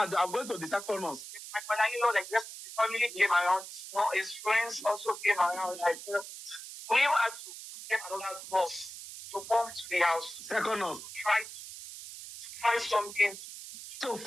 I'm going to the second nurse. My father, just the family came around. His friends also came around. We had to get another nurse to come to the house. Second nurse. Try to find something. To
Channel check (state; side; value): noise; right; hiss, 12 dB below the sound